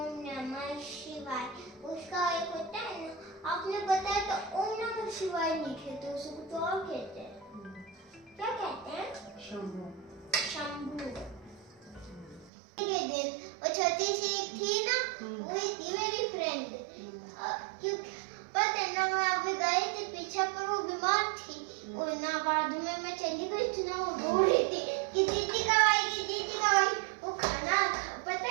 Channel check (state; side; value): drops out; left; at 12.5 s